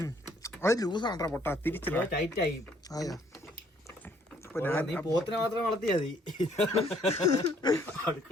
അത് ലൂസാണ്ടാ പൊട്ടാ. തിരിച്ചില്ല, ടൈറ്റ് ആയി. ആയാ നീ പോത്തിനെ മാത്രം വളർത്തിയാ മതി.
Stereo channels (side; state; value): both; normal; correlation 0.64